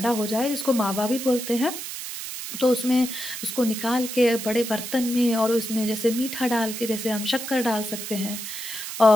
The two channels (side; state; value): right; noise; hiss, 7 dB below the sound